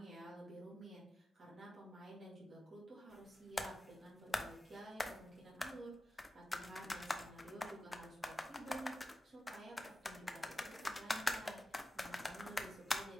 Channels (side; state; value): both; normal; correlation 0.93